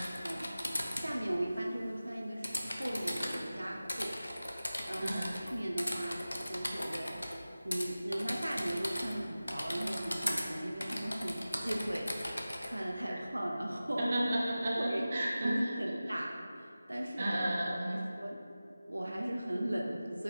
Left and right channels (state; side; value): inverted; both; correlation -0.96